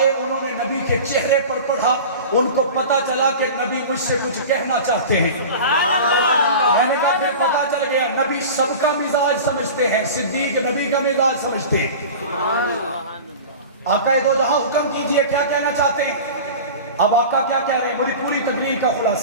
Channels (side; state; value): both; inverted; correlation -0.34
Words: انہوں نے نبی کے چہرے پر پڑھا، ان کو پتا چلا کہ نبی مجھ سے کچھ کہنا چاہتے ہیں۔ میں نے کہا پھر پتا چل گیا نبی سب کا مزاج سمجھتے ہیں، صدیق نبی کا مزاج سمجھتے ہیں۔ آقا دو جہاں حکم کیجئے کیا کہنا چاہتے ہیں؟ اب آقا کیا کہہ رہے ہیں، بڑی پوری تقریر کا